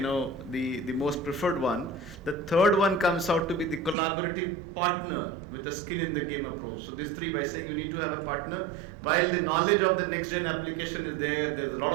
most preferred one. The third one comes out to be the collaborative partner with a skin in the game approach. So these three, by saying you need to have a partner, while the knowledge of the next gen application is there's a lot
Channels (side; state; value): left; drops out; at 4.0 s